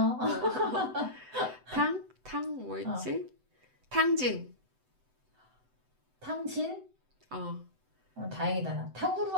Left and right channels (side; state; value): left; late; 7.9 ms